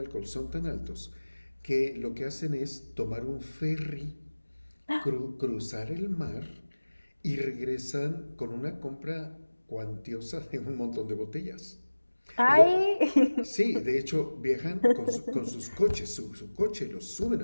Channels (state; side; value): inverted; both; correlation -1.00